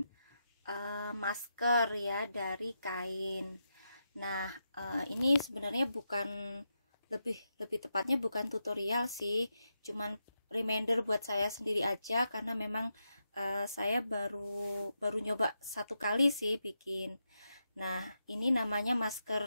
masker ya dari kain. Nah, ini sebenarnya bukan lebih tepatnya bukan tutorial sih, cuman reminder buat saya sendiri aja karena memang saya baru nyoba satu kali sih bikin. Nah, ini namanya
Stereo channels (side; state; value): both; inverted; correlation -0.86